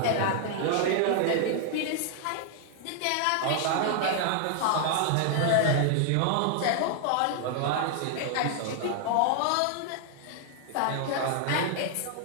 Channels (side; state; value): both; different; correlation 0.00